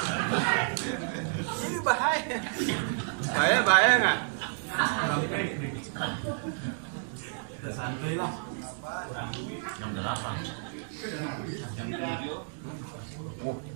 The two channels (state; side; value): silent; left; digital silence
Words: Ini bahaya. Bahaya nggak? Santuy lah. Yang 8.